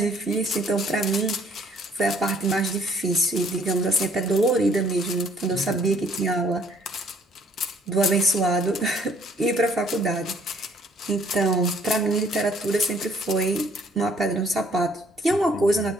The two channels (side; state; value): both; normal; correlation 0.61